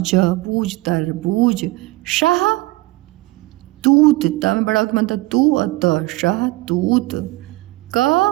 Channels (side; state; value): left; quieter; 21.0 dB